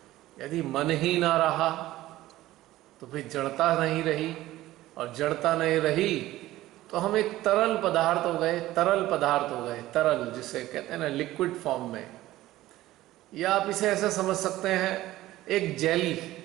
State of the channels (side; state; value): left; quieter; 15.9 dB